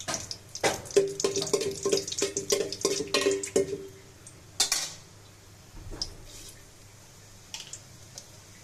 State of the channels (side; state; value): both; identical; correlation 1.00